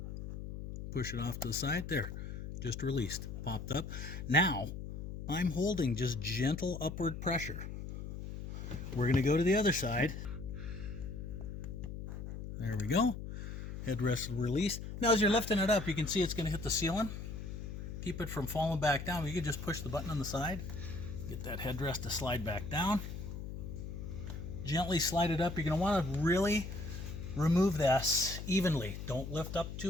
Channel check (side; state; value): left; noise; hum, 7 dB below the sound